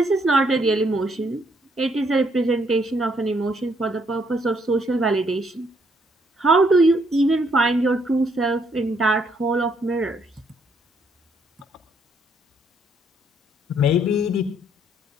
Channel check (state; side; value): normal; both; correlation 0.70